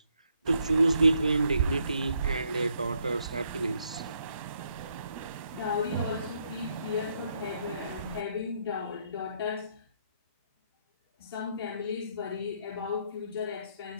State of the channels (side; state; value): both; inverted; correlation -0.74